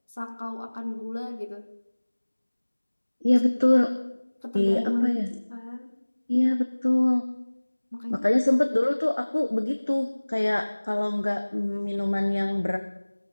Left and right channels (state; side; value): inverted; both; correlation -1.00